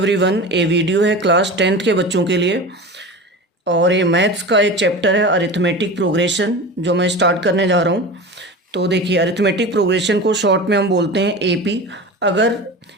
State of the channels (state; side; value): normal; both; correlation 0.31